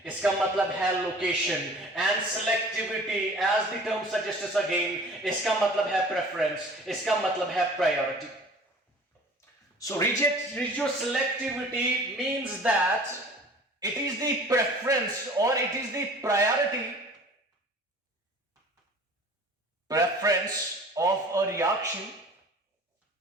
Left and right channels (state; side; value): normal; both; correlation 0.46